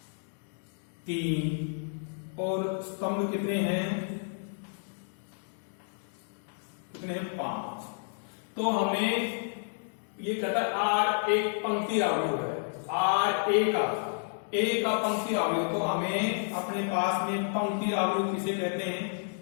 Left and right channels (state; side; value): silent; right; digital silence